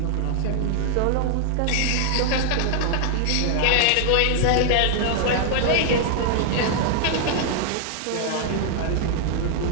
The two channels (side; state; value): both; different; correlation 0.00